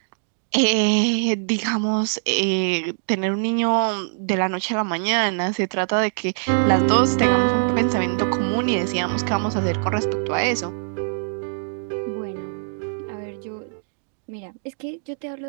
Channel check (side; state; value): left; silent; digital silence